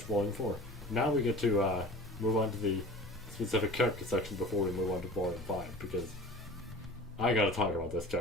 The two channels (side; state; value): both; normal; correlation 0.40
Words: Volume 4. Now we get to move on to the specific character section before we move on to Volume 5, because I gotta talk about this